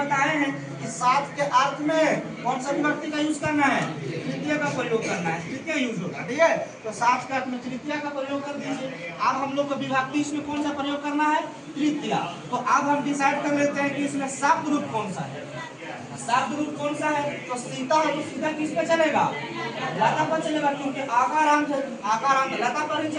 हैं कि साथ के अर्थ में कौन सा विभक्ति का यूज करना है, तृतीय का प्रयोग करना है, तृतीय यूज होगा, ठीक है। तो साथ के अर्थ में तृतीय का प्रयोग कर दीजिए। अब हम लोग को विभक्ति इसमें कौन सा प्रयोग करना है, तृतीय। तो अब हम डिसाइड कर लेते हैं कि इसमें शब्द रूप कौन सा है, शब्द रूप कौन सा है, तो सीता है, तो सीता किस पे चलेगा, लता पर चलेगा, क्योंकि आकारांत है, आकारांत लता पर ही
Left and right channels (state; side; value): identical; both; correlation 1.00